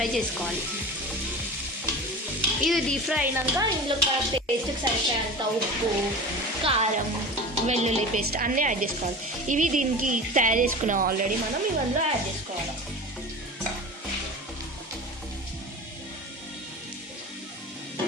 చేసుకోవాలి. ఇది డీప్ ఫ్రై అయినాక ఇందులో పేస్ట్కి సరిపోయేంత ఉప్పు, కారం, వెల్లుల్లి పేస్ట్ అన్నీ యాడ్ చేసుకోవాలి. ఇవి దీనికి తయారు చేసుకున్నాం ఆల్రెడీ, మనం ఇవన్నీ యాడ్ చేసుకోవాలి.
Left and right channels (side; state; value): both; normal; correlation 0.33